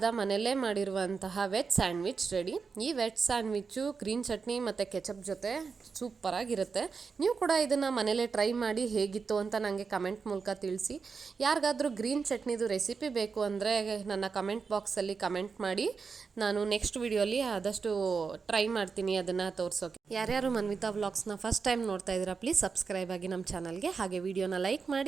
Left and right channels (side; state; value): left; quieter; 5.2 dB